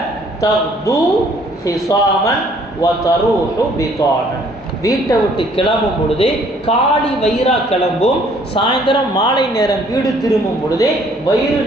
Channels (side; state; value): both; normal; correlation 0.61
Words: தக்து ஹிசாமன் வ தரூஹு பிதானன், வீட்டை விட்டு கிளம்பும் பொழுது காலி வயிறா கிளம்பும், சாயந்தரம் மாலை நேரம் வீடு திரும்பும் பொழுது வயிறு